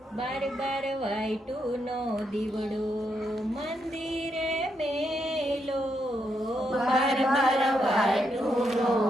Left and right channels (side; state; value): both; normal; correlation 0.80